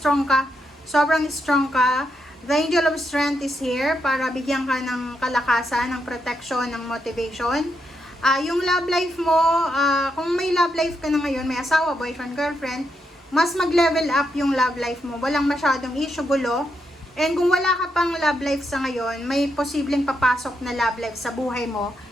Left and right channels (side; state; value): both; normal; correlation 0.81